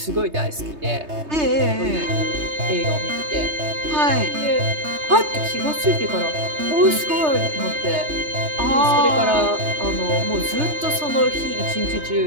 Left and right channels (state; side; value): late; left; 3.3 ms